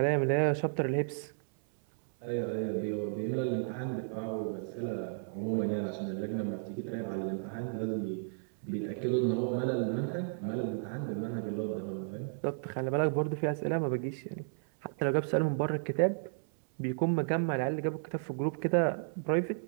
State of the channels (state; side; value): silent; left; 56 dB below the other